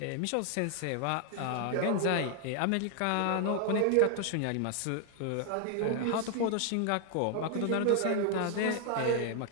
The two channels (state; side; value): different; both; correlation 0.00